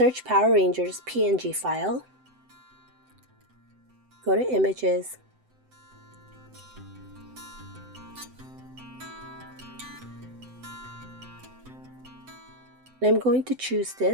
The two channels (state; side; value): late; left; 7.8 ms